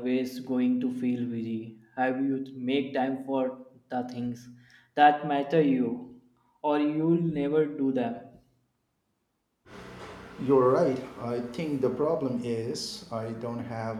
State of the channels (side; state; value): both; identical; correlation 1.00